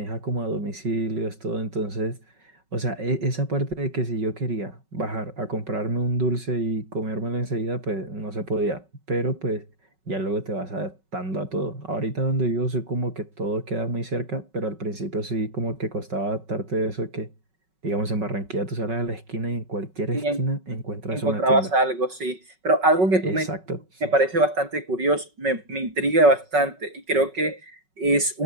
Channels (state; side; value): late; left; 5.4 ms